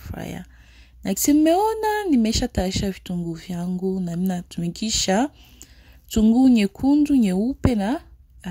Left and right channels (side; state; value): both; identical; correlation 1.00